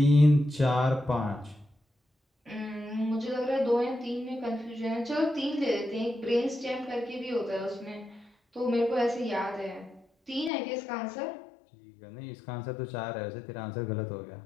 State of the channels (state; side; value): drops out; right; at 10.5 s